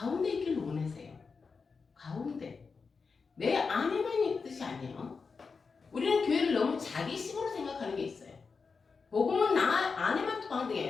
있기를 원하세요. 가운데. 내 안에만 있는 뜻이 아니에요. 우리는 교회를 너무 자기식으로 생각하는 게 있어요. 복음은 나 안에만 통하는 게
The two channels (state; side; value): quieter; right; 4.9 dB